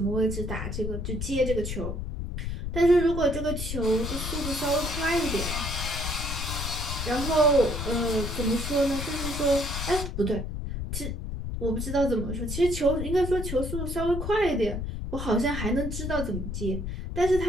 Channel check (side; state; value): left; noise; rumble, 4 dB below the sound